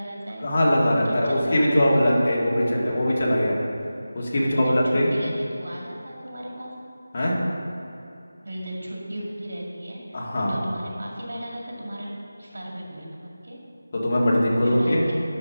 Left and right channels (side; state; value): both; inverted; correlation -0.95